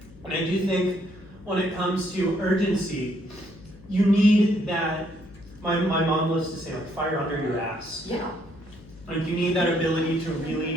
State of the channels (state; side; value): noise; left; hum, 22 dB below the sound